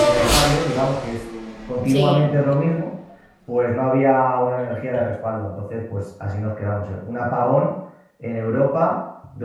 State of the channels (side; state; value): both; identical; correlation 1.00